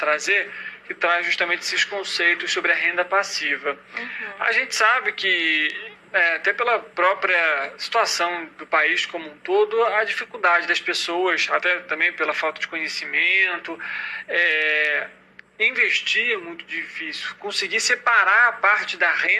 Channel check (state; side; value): identical; both; correlation 1.00